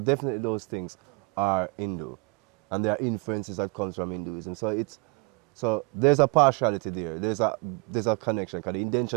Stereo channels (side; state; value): left; quieter; 32.0 dB